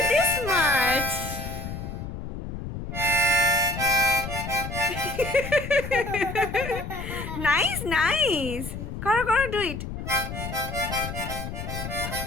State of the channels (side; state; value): left; noise; rumble, 7 dB below the sound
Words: this much. Nice. Karo, do it.